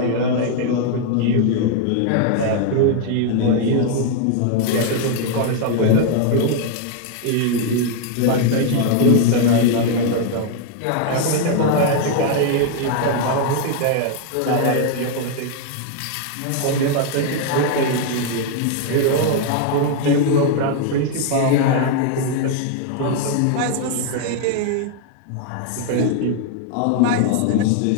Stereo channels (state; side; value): different; both; correlation 0.00